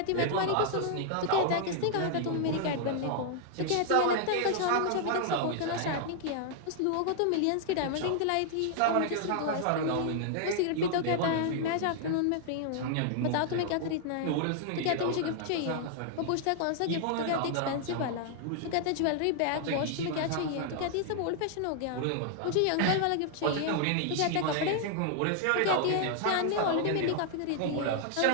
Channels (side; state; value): both; different; correlation 0.00